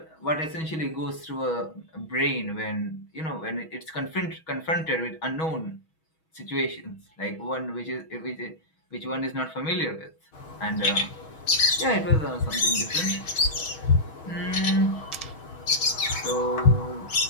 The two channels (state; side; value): late; right; 6.3 ms